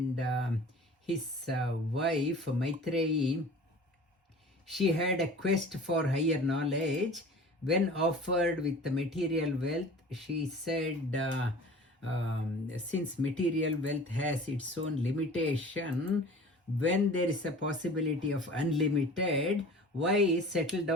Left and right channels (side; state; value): both; normal; correlation 0.42